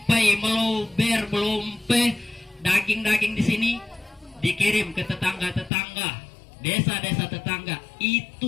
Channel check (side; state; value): right; drops out; at 5.7 s